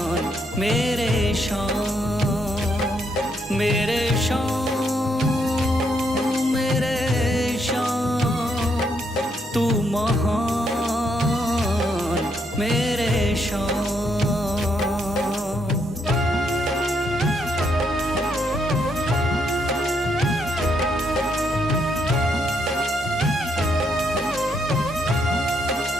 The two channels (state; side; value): normal; both; correlation 0.75